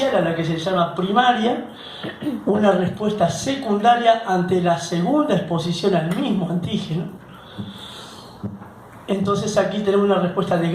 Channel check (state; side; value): identical; both; correlation 1.00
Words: a la que se llama primaria, una respuesta secundaria ante la segunda exposición al mismo antígeno. Entonces aquí tenemos una respuesta de